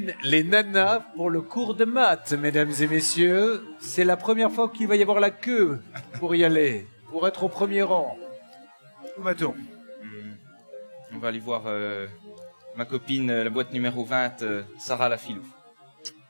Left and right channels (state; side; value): inverted; both; correlation -1.00